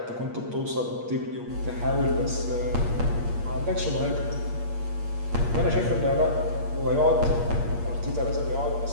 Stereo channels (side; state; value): left; late; 8.5 ms